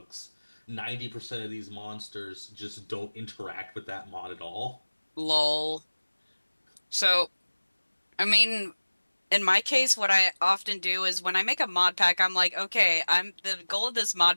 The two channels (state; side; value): inverted; both; correlation -1.00